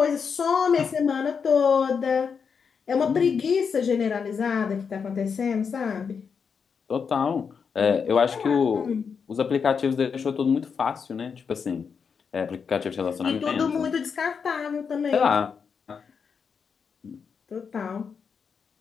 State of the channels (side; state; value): right; quieter; 6.1 dB